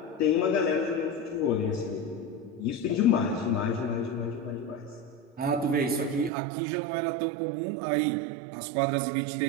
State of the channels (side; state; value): left; drops out; at 6.3 s